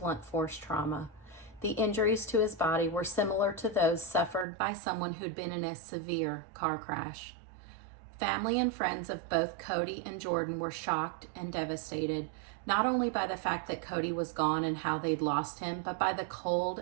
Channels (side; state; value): left; drops out; at 4.5 s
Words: force trauma. The injuries to his body were similar to those suffered by someone who'd been in a severe car crash. Family and friends of both Cody and Jordan were shocked and devastated, not only by the fact that Cody was gone and how they'd lost him, but by the